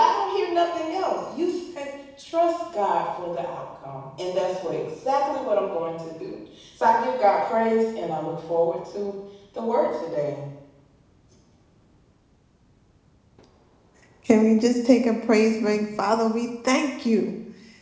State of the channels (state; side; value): identical; both; correlation 1.00